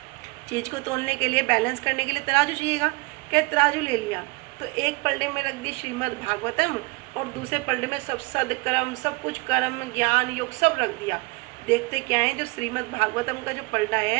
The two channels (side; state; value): left; quieter; 26.8 dB